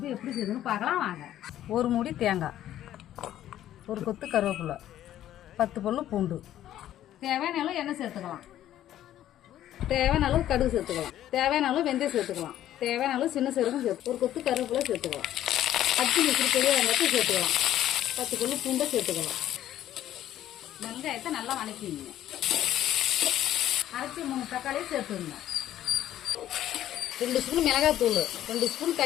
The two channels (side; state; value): right; quieter; 12.3 dB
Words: எப்படி செய்யுதுன்னு பார்க்கலாம் வாங்க. ஒரு மூடி தேங்காய், ஒரு கொத்து கருவேப்பிலை, 10 பல்லு பூண்டு, தேவையான அளவு எண்ணெய் சேர்த்துக்கலாம், தேவையான அளவு கடுகு சேர்த்துக்கலாம், தேவையான அளவு வெந்தயம் சேர்த்துக்கலாம், தேவையான அளவு சின்ன சீரகம் சேர்த்து ஒரு கொத்து கருவேப்பிலை சேர்த்துக்கலாம், 10 நிமிஷம் பெரிய வெங்காயத்தை சேர்த்துக்கலாம், 10 பல்லு பூண்டை சேர்த்துக்கலாம். வெங்காயத்தை நல்லா வணக்கிங்க. அரைச்சி 3 தக்காளியை சேர்த்துங்க. 2 ஸ்பூன் மிளகாய்த்தூள், 2 ஸ்பூன்